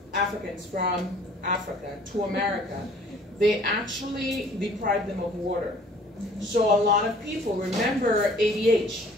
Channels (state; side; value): normal; both; correlation 0.54